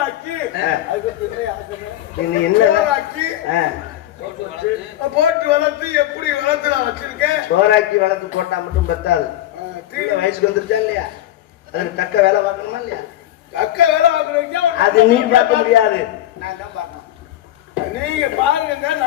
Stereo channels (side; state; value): right; quieter; 13.4 dB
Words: ஆக்கி போட்டு வளர்த்து எப்படி வளர்த்து நான் வச்சிருக்கேன். சோறாக்கி வளர்த்து போட்டா மட்டும் பத்தாது. வயசுக்கு வந்துருச்சா இல்லையா? அதுக்கு தக்க வேலை பார்க்கணுமா இல்லையா? தக்க வேலை பார்க்கறீங்க. அது நீ பார்க்க முடியாது, நான் தான் பார்க்கணும். நீங்க பாருங்க,